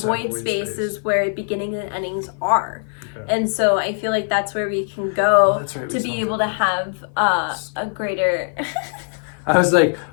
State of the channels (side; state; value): right; silent; 55 dB below the other